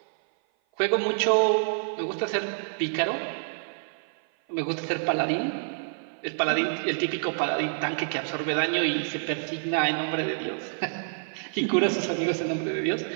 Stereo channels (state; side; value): silent; left; 55 dB below the other